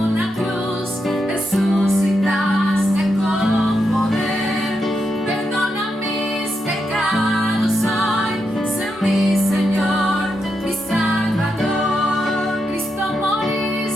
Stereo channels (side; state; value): both; normal; correlation 0.84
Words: cruz, resucitaste con poder. Perdona mis pecados hoy, sé mi Señor, mi Salvador. Cristo,